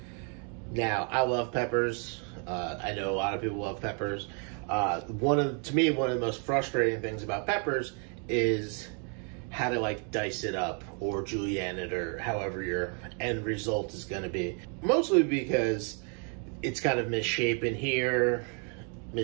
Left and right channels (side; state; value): left; quieter; 39.0 dB